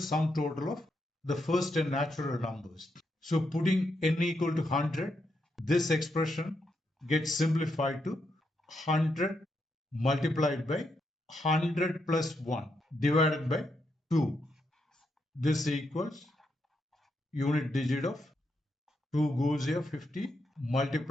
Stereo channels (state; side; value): normal; both; correlation 0.81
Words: total of the first 10 natural numbers. So putting n equal to 100, this expression gets simplified to 100 multiplied by 100 plus 1 divided by 2. This equals unit digit of 2 goes here 50